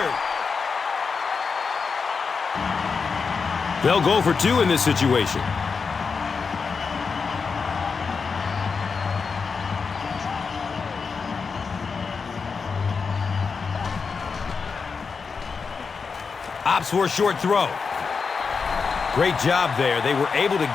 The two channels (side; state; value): right; quieter; 5.2 dB